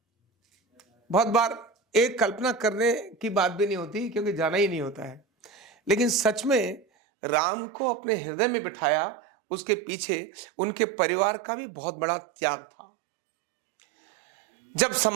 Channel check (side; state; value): left; drops out; at 6.9 s